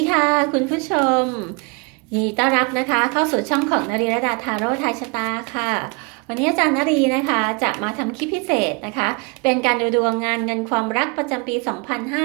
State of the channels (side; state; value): left; quieter; 31.6 dB